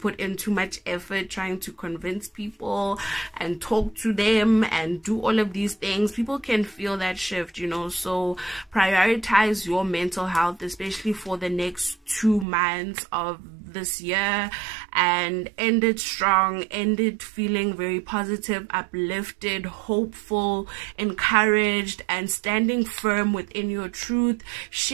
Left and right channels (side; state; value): left; drops out; at 12.5 s